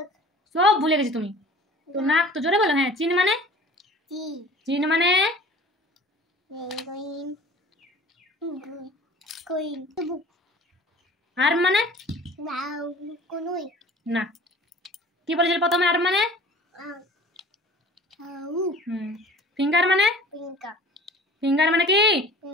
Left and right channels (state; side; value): normal; both; correlation 0.46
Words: সব ভুলে গেছি তুমি তো নাক তো জোরে বলো হ্যাঁ চিন মানে টি চিন মানে পেঙ্গুইন কুইন বুক আর্ম মানে নাও কুনুই না কি বলেছিল প্রথমে আর্ম মানে আউ ফিঙ্গার মানে পিঙ্কা ফিঙ্গার মানে কি